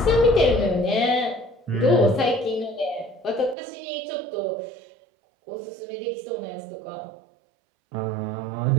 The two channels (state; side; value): drops out; left; at 3.6 s